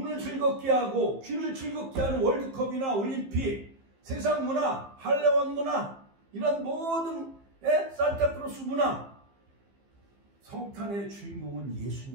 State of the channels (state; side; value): late; left; 15 ms